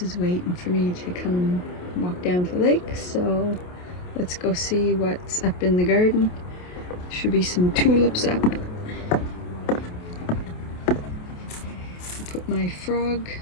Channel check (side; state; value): right; late; 28 ms